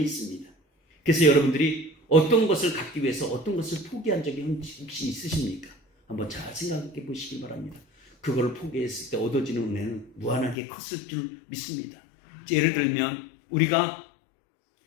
있습니다. 그래서 여러분들이 어떤 것을 갖기 위해서 어떤 것을 포기한 적이 혹시 있으십니까? 한번 잘 생각해 보시기 바랍니다. 그걸 포기했을 때 얻어지는 은혜는 무한하게 컸을 줄 믿습니다. 예를 들면 우리가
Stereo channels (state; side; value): drops out; right; at 10.6 s